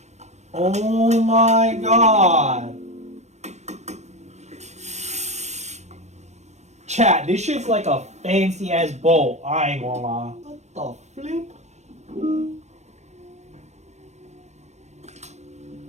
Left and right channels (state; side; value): late; left; 0.33 ms